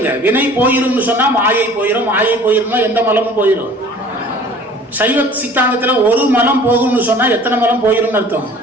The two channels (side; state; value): both; normal; correlation 0.48